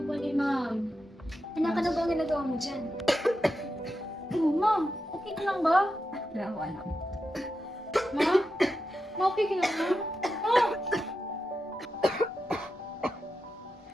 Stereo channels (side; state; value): both; normal; correlation 0.88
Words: ni Ma'am. Anak, ano ba ang ginagawa mo dyan? Oh, Ma'am, okay ka lang ba? Wala. Ma'am? Okay ka lang ba? Oh!